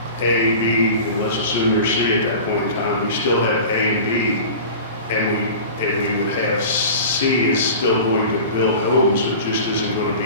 A, B, and let's assume there's C at that point in time, we still have A and B, and we would have C is still going to build homes, it just isn't going to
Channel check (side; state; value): both; inverted; correlation -0.37